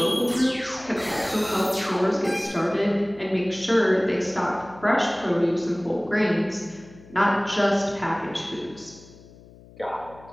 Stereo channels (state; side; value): noise; left; hum, 22 dB below the sound